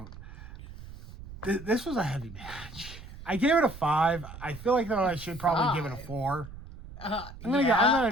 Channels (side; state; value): right; noise; rumble, 15 dB below the sound